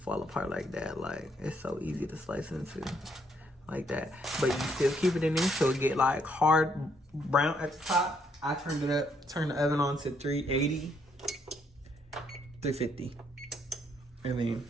apart like that. Like, it's so easy to slice into like that. But you still keep it in there so it get like hard brown at the top. I turned it up, turned the oven on to 380, 350. And then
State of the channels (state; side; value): normal; both; correlation 0.72